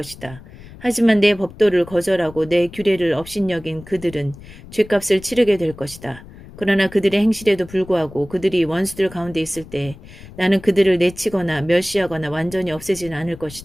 하지만 내 법도를 거절하고 내 규례를 업신여긴 그들은 죗값을 치르게 될 것이다. 그러나 그들의 행실에도 불구하고 그들이 원수들 가운데 있을 때 나는 그들을 내치거나 멸시하거나 완전히 없애지는 않을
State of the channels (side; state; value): left; noise; rumble, 18 dB below the sound